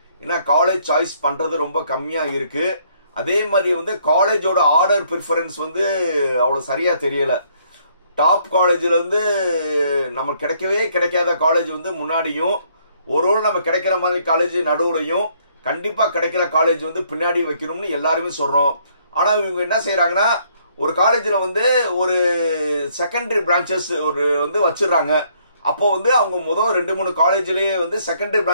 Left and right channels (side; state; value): both; inverted; correlation -0.67